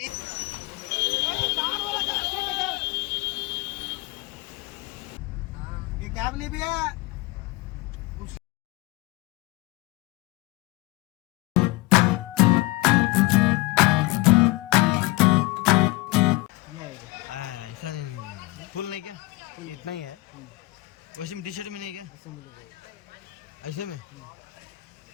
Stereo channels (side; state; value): right; quieter; 21.0 dB